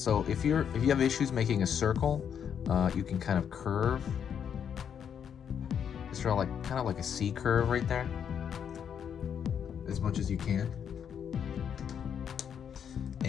if you have issues making a circle, you can kind of curve. Just draw kind of like a C curve right there, as much as you can.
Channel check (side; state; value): right; quieter; 8.1 dB